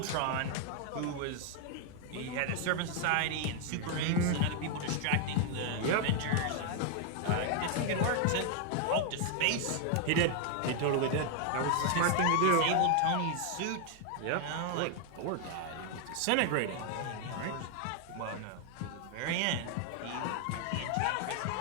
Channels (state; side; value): different; both; correlation 0.00